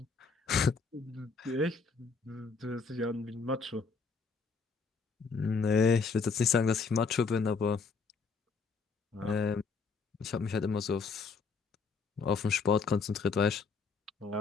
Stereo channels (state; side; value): quieter; right; 4.9 dB